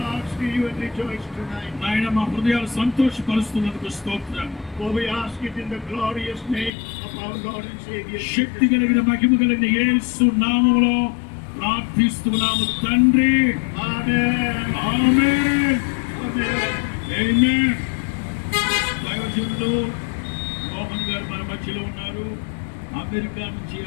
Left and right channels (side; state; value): right; drops out; at 6.7 s